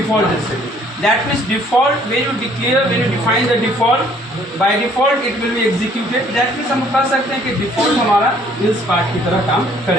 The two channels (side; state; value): both; normal; correlation 0.60